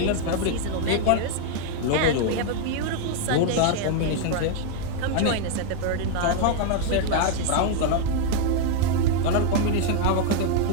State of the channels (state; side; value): different; both; correlation 0.00